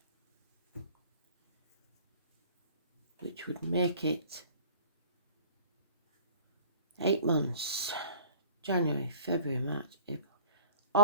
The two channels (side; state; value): both; inverted; correlation -0.48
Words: Which would make it 8 months. January, February, March, April,